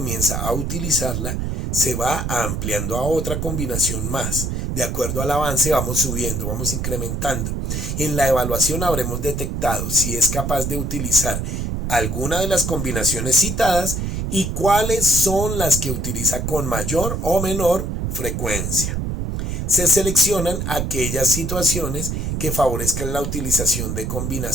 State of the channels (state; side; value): noise; right; rumble, 2 dB below the sound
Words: a utilizarla, se va ampliando a otra combinación más. De acuerdo al avance vamos subiendo, vamos incrementando. En la evaluación habremos detectado si es capaz de utilizar alguna de las combinaciones citadas y cuáles son las que utiliza con mayor o menor frecuencia. Se seleccionan aquellas situaciones que favorezcan la utilización de